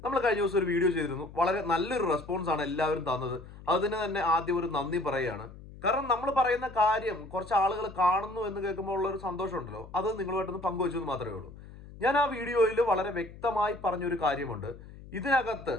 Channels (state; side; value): noise; left; hum, 17 dB below the sound